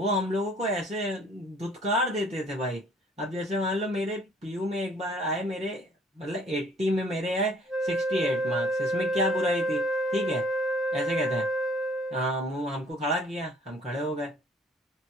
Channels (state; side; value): normal; both; correlation 0.57